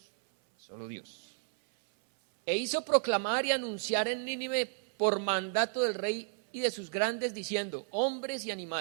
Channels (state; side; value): silent; left; 56 dB below the other